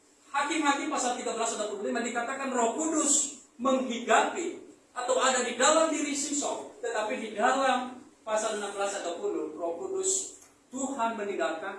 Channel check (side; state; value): both; identical; correlation 1.00